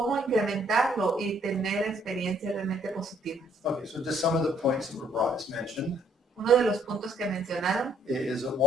incrementarlo y tener experiencias realmente positivas. Okay, so just some of the points that were brought as mentioned. Uno de los puntos que mencionaron Is that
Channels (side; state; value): both; normal; correlation 0.65